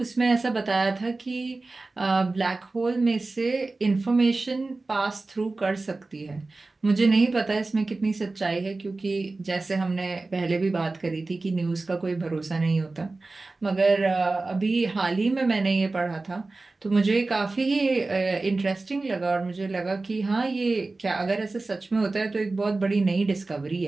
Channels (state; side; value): quieter; left; 3.4 dB